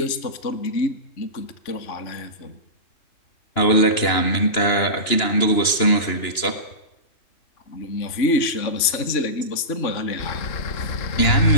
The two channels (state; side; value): late; right; 2.9 ms